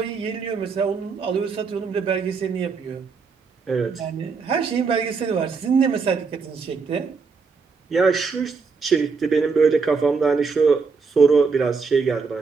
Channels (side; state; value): left; quieter; 5.0 dB